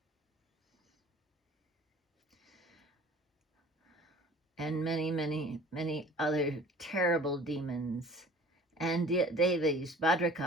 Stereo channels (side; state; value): both; normal; correlation 0.47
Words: and many, many, many other terrible demons. And Devis,